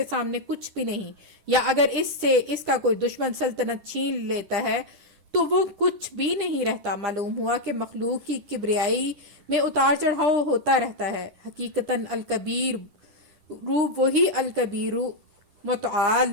سامنے کچھ بھی نہیں. یا اگر اس کا کوئی دشمن سلطنت چھین لیتا ہے تو وہ کچھ بھی نہیں رہتا. معلوم ہوا کہ مخلوق کی کبریائی میں اتار چڑھاؤ ہوتا رہتا ہے. حقیقتاً الکبیر وہی الکبیر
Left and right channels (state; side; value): late; left; 10 ms